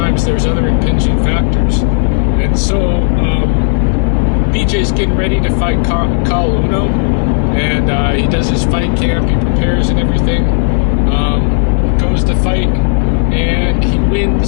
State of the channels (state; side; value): silent; right; digital silence